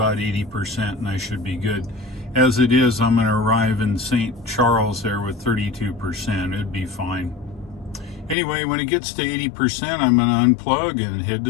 80%, and I should be good. As it is, I'm going to arrive in St. Charles there with 32%. It'd be fine. Anyway, when it gets to 80%, I'm going to unplug and head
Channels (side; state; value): right; drops out; at 8.3 s